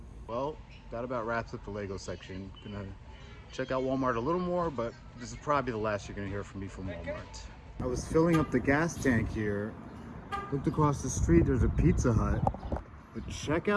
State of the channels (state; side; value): identical; both; correlation 1.00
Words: Well, that about wraps up the Lego section. Gonna check out Walmart a little more, but this is probably the last you're gonna hear from me from Walmart. I was filling up the gas tank here. Looked across the street, there's a Pizza Hut. But check